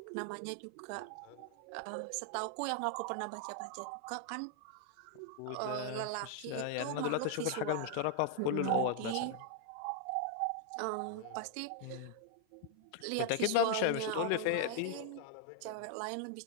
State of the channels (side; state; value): both; different; correlation 0.00